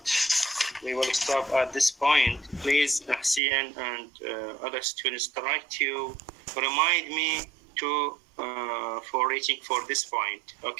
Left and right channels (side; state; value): left; drops out; at 3.4 s